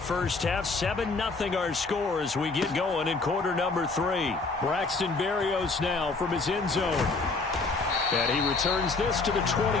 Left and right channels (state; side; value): quieter; right; 3.8 dB